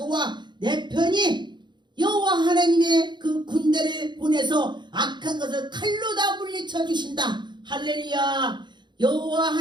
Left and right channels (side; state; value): left; late; 0.22 ms